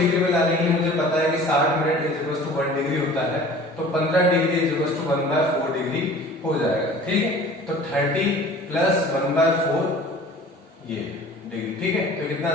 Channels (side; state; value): both; normal; correlation 0.45